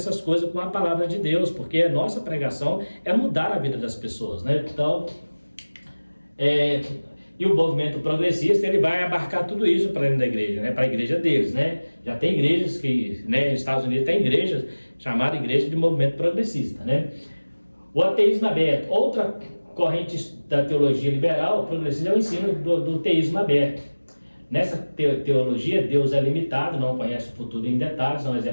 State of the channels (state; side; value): inverted; both; correlation -1.00